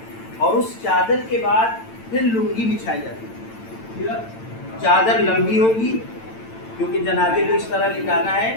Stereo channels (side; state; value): right; late; 8.9 ms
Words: اور اس چادر کے بعد پھر لنگی بچھائی جاتی ہے. چادر لمبی ہوگی کیونکہ جنازے کو اس طرح لٹانا